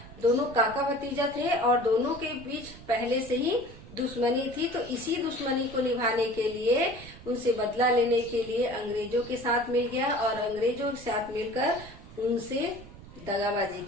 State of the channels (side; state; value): right; noise; rumble, 17 dB below the sound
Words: दोनों काका भतीजा थे और दोनों के बीच पहले से ही दुश्मनी थी। तो इसी दुश्मनी को निभाने के लिए, उनसे बदला लेने के लिए अंग्रेजों के साथ मिल गया और अंग्रेजों के साथ मिलकर उनसे दगाबाजी